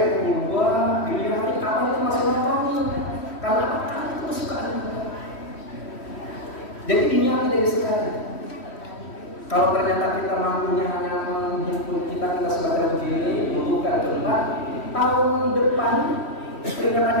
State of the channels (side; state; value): right; late; 3.1 ms